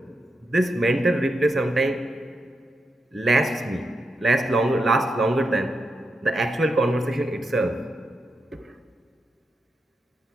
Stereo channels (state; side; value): normal; both; correlation 0.85